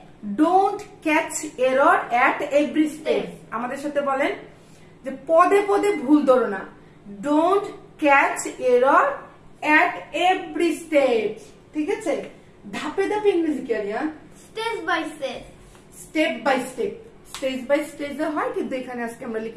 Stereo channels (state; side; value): identical; both; correlation 1.00